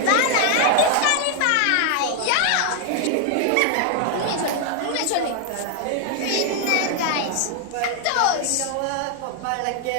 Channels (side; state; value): both; different; correlation 0.00